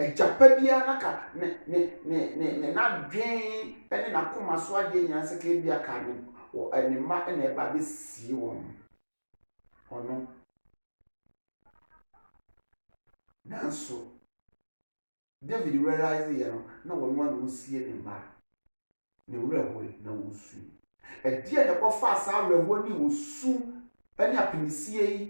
naka ne na dwen ene na koma so ade nya se ka bia ka ne o anima ene ba be si won ono nanso David realize na wɔn ano osie ne mma ne wura na wosu ɛdeɛ na kɔfa asa awɛhoɔ ne wosu ɛne apinisie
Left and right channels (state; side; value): inverted; both; correlation -1.00